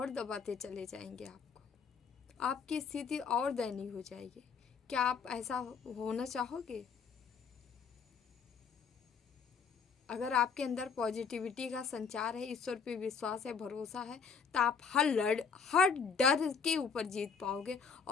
दबाते चले जाएंगे आपको, आपकी स्थिति और दयनीय हो जाएगी। क्या आप ऐसा होना चाहोगे? अगर आपके अंदर पॉजिटिविटी का संचार है, ईश्वर पे विश्वास है, भरोसा है, तो आप हर डर के ऊपर जीत पाओगे,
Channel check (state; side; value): quieter; right; 5.9 dB